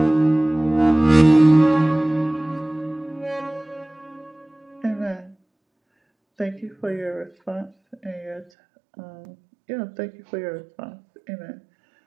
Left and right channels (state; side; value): drops out; left; at 8.5 s